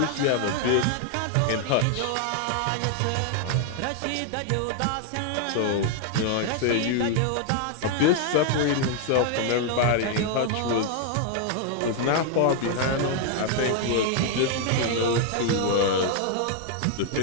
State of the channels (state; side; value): different; both; correlation 0.00